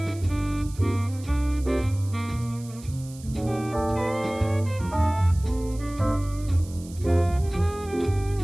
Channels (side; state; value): right; noise; hiss, 20 dB below the sound